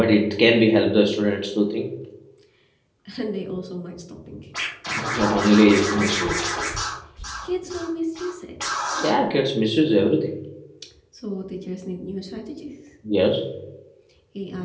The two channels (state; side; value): identical; both; correlation 1.00